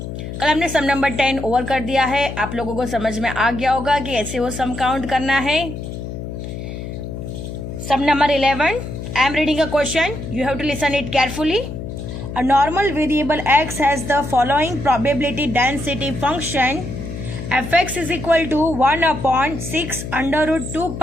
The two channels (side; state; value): left; noise; hum, 8 dB below the sound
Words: कल हमने सम नंबर 10 ओवर कर दिया है। आप लोगों को समझ में आ गया होगा कि ऐसे वो सम काउंट करना है। Sum number 11, I am reading a question, you have to listen it carefully. A normal variable x has the following probability density function. Fx is equal to 1 upon 6 under root 2